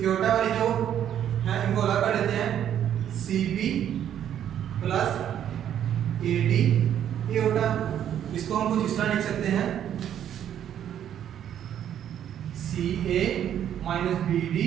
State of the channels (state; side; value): quieter; left; 10.1 dB